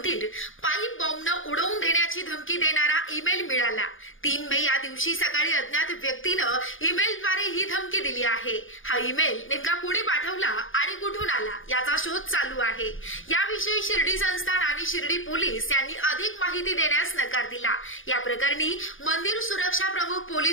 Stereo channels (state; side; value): late; right; 0.58 ms